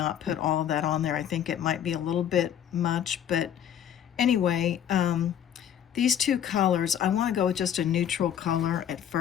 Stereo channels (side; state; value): right; quieter; 9.6 dB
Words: put all of that on there. I think it might be a little bit much, but anyway, these two colors, I want to go with just a neutral color at